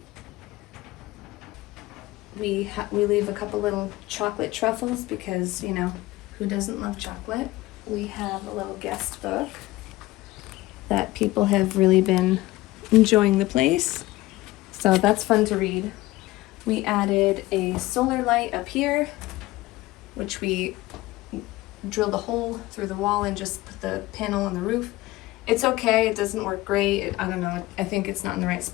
We leave a couple little chocolate truffles because, you know, who doesn't love chocolate? We have a little guest book that people have really been enjoying the place. So that's fun to read. We added a solar light up here, which we drilled a hole through the wall and just put the panel on the roof. It's okay, it doesn't work great. I don't know, I think it's not in the right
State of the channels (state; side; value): quieter; right; 18.5 dB